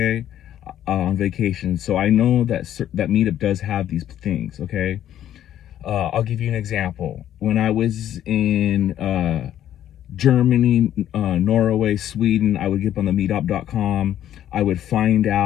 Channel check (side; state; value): right; quieter; 11.3 dB